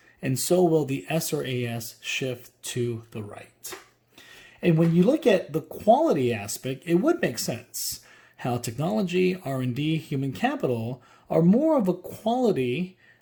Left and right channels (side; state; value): both; identical; correlation 1.00